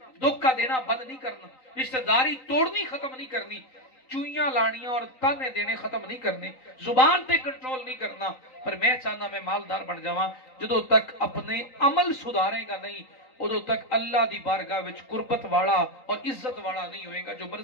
धोखा देना बंद नहीं करना, रिश्तेदारी तोड़नी खत्म नहीं करनी, चुईयां लानियां और ताने देने खत्म नहीं करने, जुबान पे कंट्रोल नहीं करना। पर मैं चाहना मैं मालदार बन जावा। जो तक अपने अमल सुधारेगा नहीं, उदों तक अल्लाह दी बारगाह विच कुर्बत वाला और इज्जत वाला नहीं होएगा, जो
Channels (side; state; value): right; late; 3.9 ms